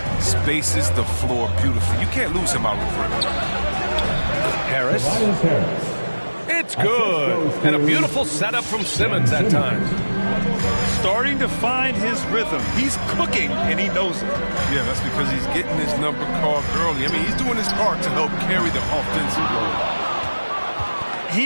Spaces the floor beautifully. You can't lose him out of the perimeter. Harris. It's good. And a beautiful setup from Simmons that time. Starting to find his rhythm. He's cooking, and he knows it. Yeah, that's because he's getting his number called early. I mean, he's doing his part to help carry the offensive load.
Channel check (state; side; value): inverted; both; correlation -1.00